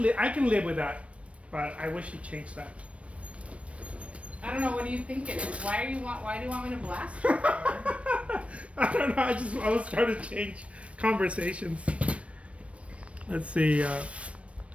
live with that, but I wish he changed that. I don't know. What do you think it is? Why do you want me to blast you? I don't know. I was trying to change conversations. Let's see.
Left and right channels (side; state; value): left; late; 0.062 ms